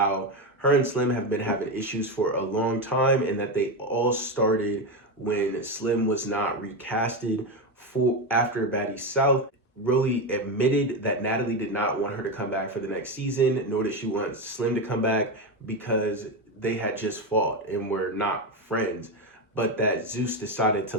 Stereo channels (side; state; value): both; normal; correlation 0.13